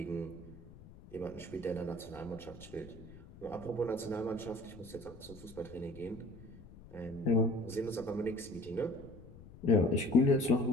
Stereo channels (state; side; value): noise; left; rumble, 18 dB below the sound